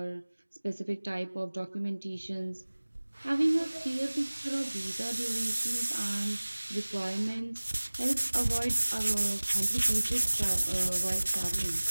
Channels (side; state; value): both; inverted; correlation -1.00